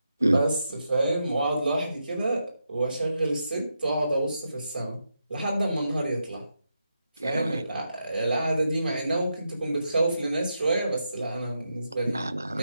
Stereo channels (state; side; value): inverted; both; correlation -0.85